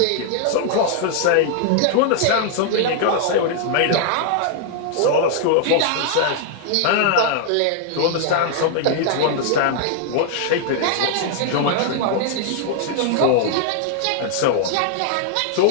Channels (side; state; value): both; different; correlation 0.00